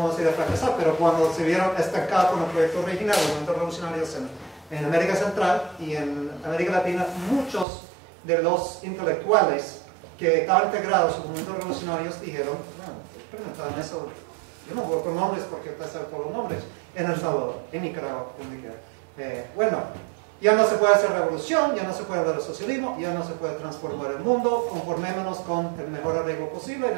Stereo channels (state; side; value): drops out; left; at 7.7 s